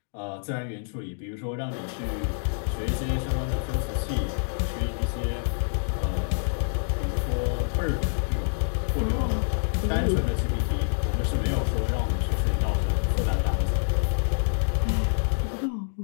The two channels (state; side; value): silent; right; digital silence